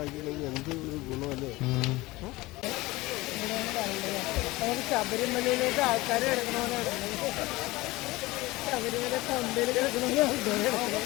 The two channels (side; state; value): right; quieter; 20.3 dB